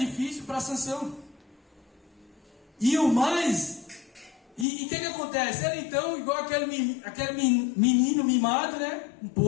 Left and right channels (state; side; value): drops out; right; at 4.7 s